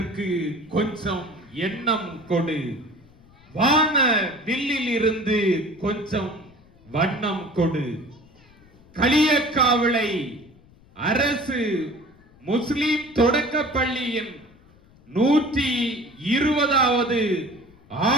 கொஞ்சம் எண்ணம் கொடு, வான வில்லில் இருந்து கொஞ்சம் வண்ணம் கொடு, களியக்காவிளை அரசு முஸ்லிம் தொடக்க பள்ளியின் 120வது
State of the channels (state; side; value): noise; left; rumble, 27 dB below the sound